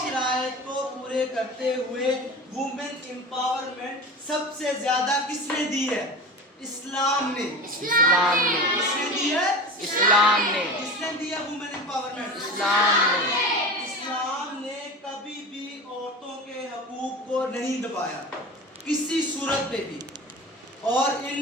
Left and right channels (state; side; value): normal; both; correlation 0.32